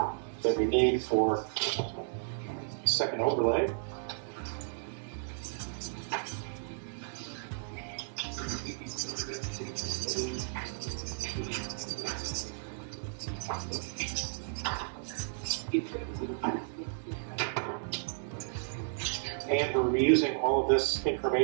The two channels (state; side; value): silent; left; 55 dB below the other